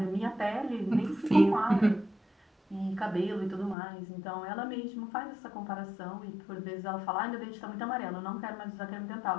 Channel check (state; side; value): drops out; right; at 3.8 s